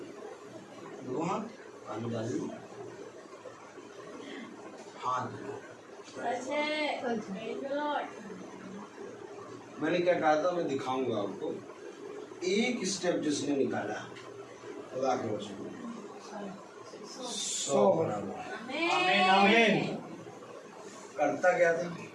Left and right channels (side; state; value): both; identical; correlation 1.00